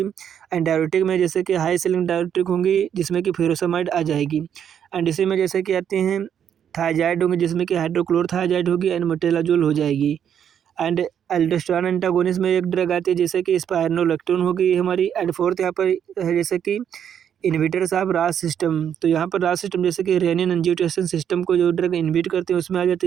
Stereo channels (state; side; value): quieter; left; 8.8 dB